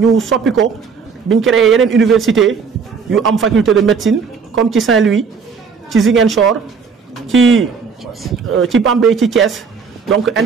soppi ko biñ créé yeneen université yu am faculté de médecine comme ci Saint-Louis ci Ziguinchor ci Bambey ci Thiès. donc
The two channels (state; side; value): quieter; left; 5.6 dB